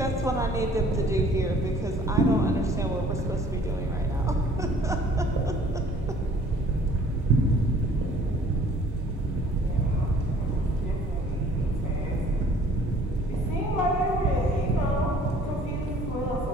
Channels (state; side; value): normal; both; correlation 0.54